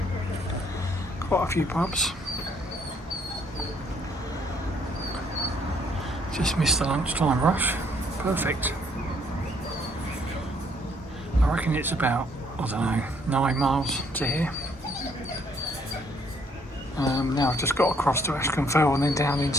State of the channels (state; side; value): normal; both; correlation 0.66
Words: Quite a few pubs. Just missed the lunchtime rush. Perfect. I reckon it's about, I don't know, 9 miles to here. Now I've just got across to Askham Fell and then down